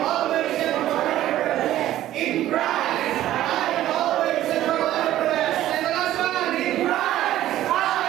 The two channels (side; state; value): left; quieter; 13.6 dB